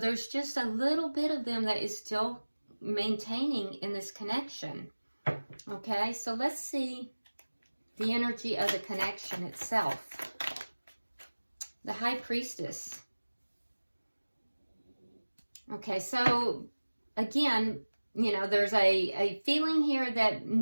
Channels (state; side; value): inverted; both; correlation -1.00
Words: just a little bit of them that is still maintaining in this connection. Okay, so let's see the energy of the connection itself. The High Priestess. Okay, so again, you know, there's a feeling here that